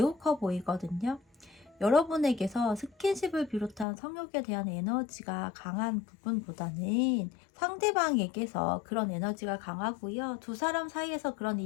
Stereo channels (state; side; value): drops out; right; at 3.9 s